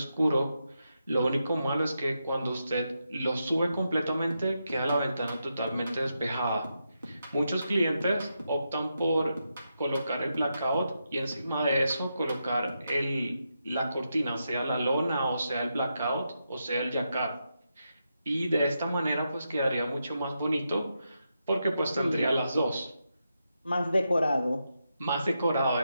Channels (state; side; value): inverted; both; correlation -0.85